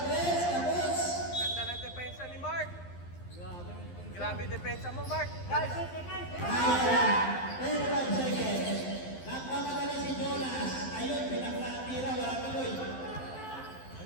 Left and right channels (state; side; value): late; right; 11 ms